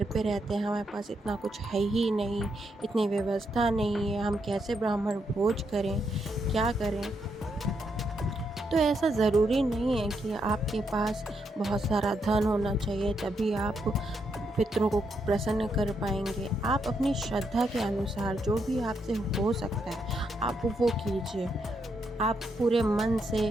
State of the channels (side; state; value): both; normal; correlation 0.79